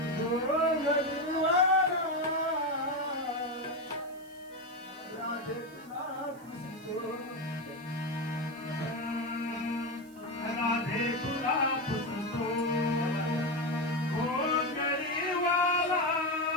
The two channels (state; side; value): noise; right; hiss, 26 dB below the sound